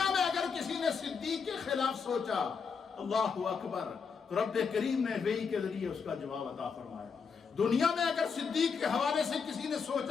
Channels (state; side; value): quieter; right; 5.8 dB